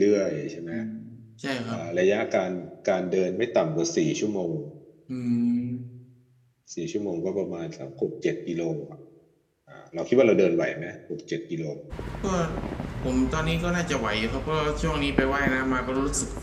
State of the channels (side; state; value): both; identical; correlation 1.00